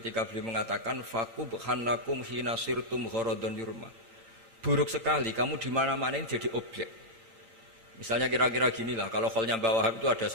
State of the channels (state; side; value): late; left; 3.8 ms